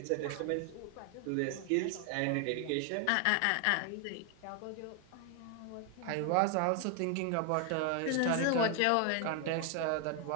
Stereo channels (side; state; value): both; different; correlation 0.00